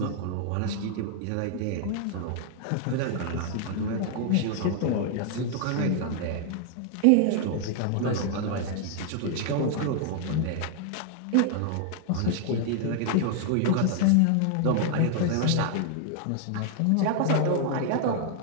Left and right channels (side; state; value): both; different; correlation 0.00